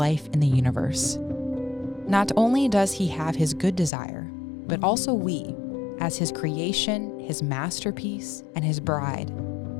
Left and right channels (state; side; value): drops out; right; at 3.9 s